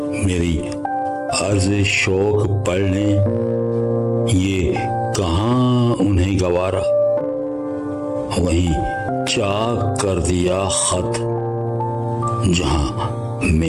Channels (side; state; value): both; identical; correlation 1.00